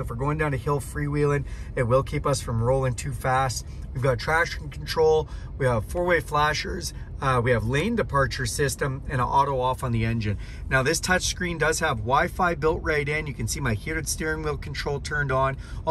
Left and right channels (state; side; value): identical; both; correlation 1.00